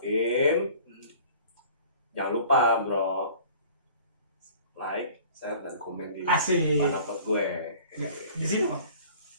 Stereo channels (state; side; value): inverted; both; correlation -0.48